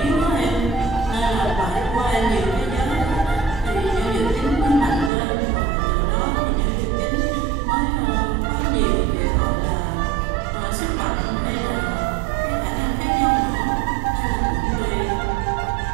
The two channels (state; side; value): drops out; left; at 5.1 s